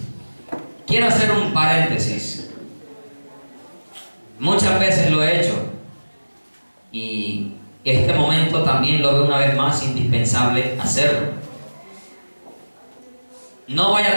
Quiero hacer un paréntesis. Muchas veces lo he hecho y este momento también lo veo una vez más indispensable hacerlo. No vaya a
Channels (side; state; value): both; inverted; correlation -1.00